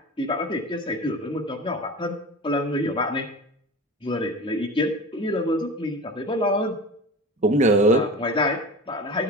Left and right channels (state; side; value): normal; both; correlation 0.33